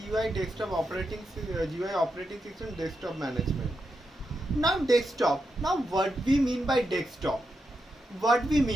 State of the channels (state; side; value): normal; both; correlation 0.85